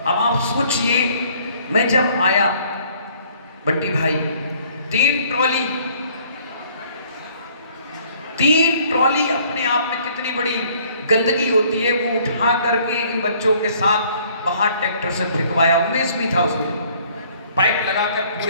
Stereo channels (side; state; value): both; inverted; correlation -0.59